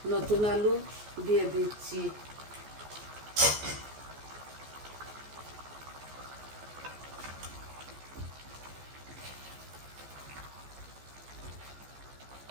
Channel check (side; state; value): left; late; 14 ms